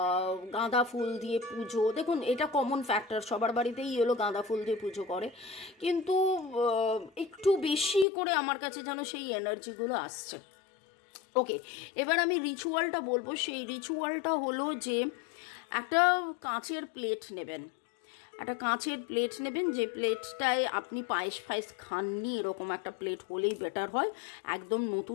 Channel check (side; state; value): right; drops out; at 8.1 s